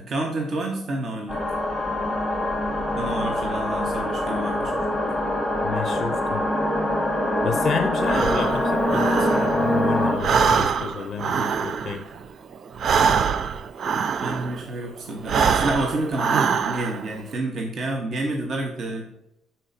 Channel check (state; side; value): normal; both; correlation 0.76